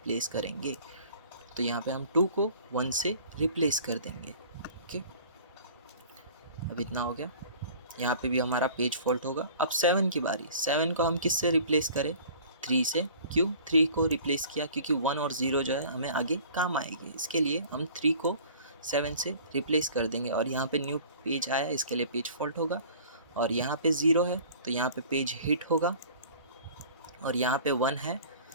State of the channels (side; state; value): both; inverted; correlation -0.47